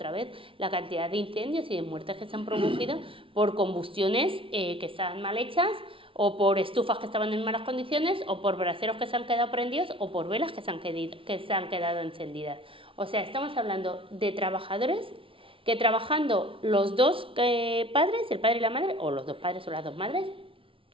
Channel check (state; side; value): late; left; 0.26 ms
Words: vez, la cantidad de incendios y de muertes que se han producido por combustiones que están mal hechas, o por estufas que estaban en malas condiciones, o por braseros que se han quedado prendidos, o por velas que se han quedado encendidas. O sea, estamos hablando de trabajadores que trabajando los dos padres, el padre y la madre, o los dos padres o las dos madres,